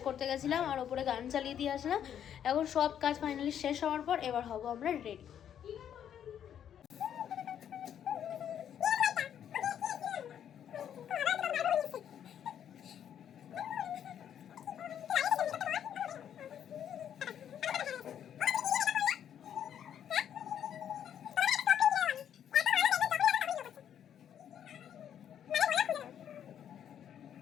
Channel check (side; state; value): right; quieter; 9.4 dB